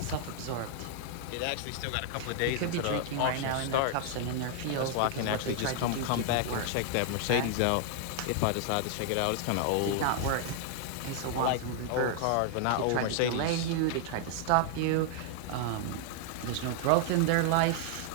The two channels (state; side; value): different; both; correlation -0.01